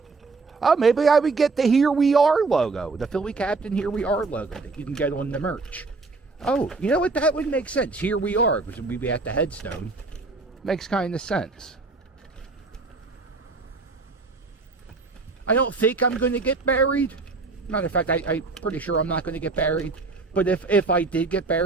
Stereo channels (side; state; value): left; quieter; 3.9 dB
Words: Oh, maybe I would get the Here We Are logo. The Philly Captain Here We Are logo that you can get on the merch. Oh, you know what? That would make sense. Here We Are, because we'd be at the headstone. Makes kind of sense. I don't think I'm going to get buried Matter of fact, I'm pretty sure I'm not going to get buried. But if I did get